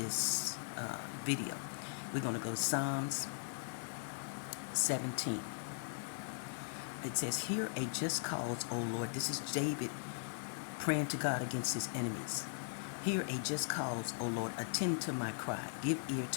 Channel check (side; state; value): right; silent; digital silence